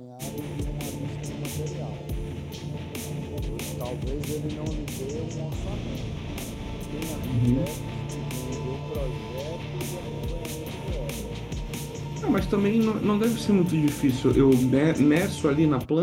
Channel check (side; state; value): both; identical; correlation 1.00